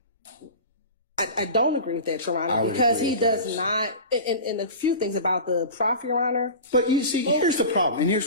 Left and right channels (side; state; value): both; inverted; correlation -0.34